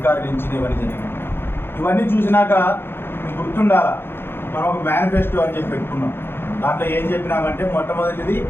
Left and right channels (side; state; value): right; late; 0.11 ms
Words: నుంచి ఇవన్నీ జరిగింది. ఇవన్నీ చూసినాక మీకు గుర్తుండాలా, మనం ఒక మేనిఫెస్టో అని చెప్పి పెట్టుకున్నాం. దాంట్లో ఏం చెప్పినామంటే మొట్టమొదటిది